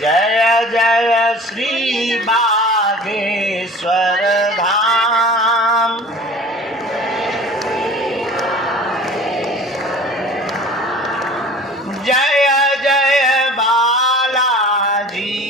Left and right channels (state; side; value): normal; both; correlation 0.43